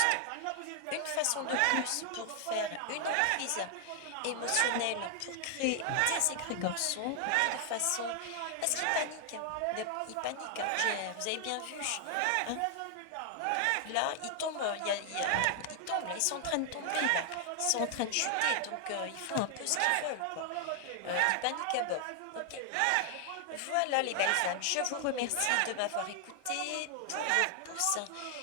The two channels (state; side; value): different; both; correlation 0.00